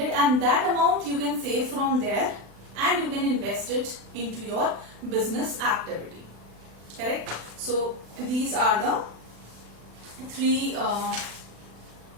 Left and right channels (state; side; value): late; left; 35 ms